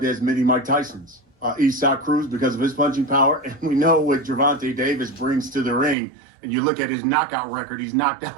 as mini Mike Tysons. Isaac Cruz because of his punching power, and we know what Gervonta Davis brings to the ring. And you look at his knockout record, he's knocked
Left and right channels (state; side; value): drops out; left; at 6.0 s